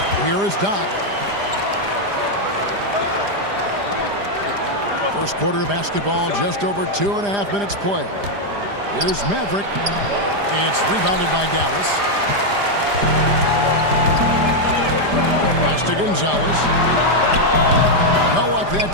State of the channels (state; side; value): late; left; 5.0 ms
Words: Here is Doc. First quarter of basketball, just over 2.5 minutes play. Here's Maverick. It's rebounded by Dallas. Pass to Gonzalez. No luck that